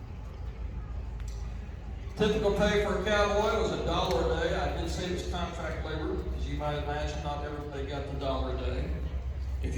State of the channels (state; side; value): identical; both; correlation 1.00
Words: Typical pay for a cowboy was $1 a day. I did say it was contract labor, as you might imagine, not everybody got the $1 a day. If